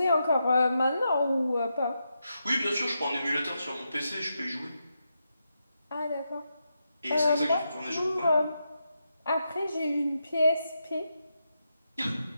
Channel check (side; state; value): both; inverted; correlation -0.85